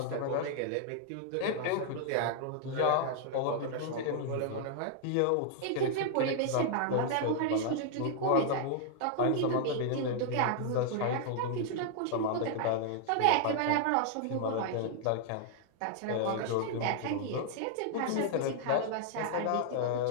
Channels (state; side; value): different; both; correlation -0.01